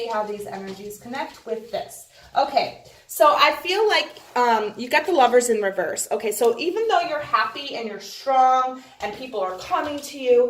how these energies connect with this. Okay, so I feel like you got the Lovers in reverse. Okay, so even though you're happy and you're strong and people are coming to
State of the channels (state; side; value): identical; both; correlation 1.00